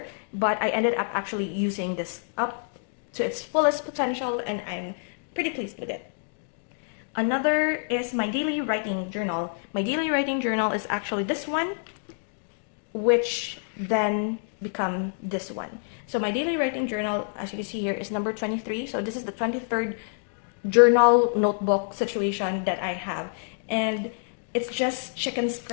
but I ended up actually using this up to its fullest potential, and I'm pretty pleased with it. Another is my daily writing journal. My daily writing journal is actually this one, which then become this one. So my daily writing journal, as you can see here, is number 23. So this is the 23rd journal notebook situation that I have. And it's just chicken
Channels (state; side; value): silent; right; digital silence